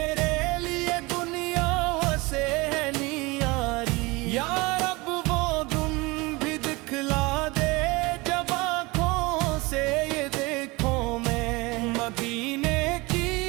لیے دنیا سے ہے نیاری یار مدینے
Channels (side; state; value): left; quieter; 24.2 dB